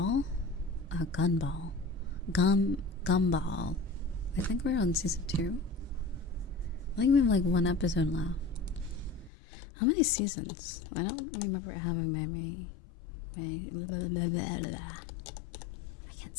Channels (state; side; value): drops out; right; at 9.3 s